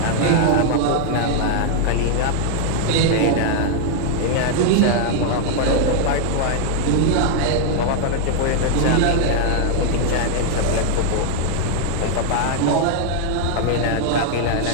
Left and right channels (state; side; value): different; both; correlation 0.00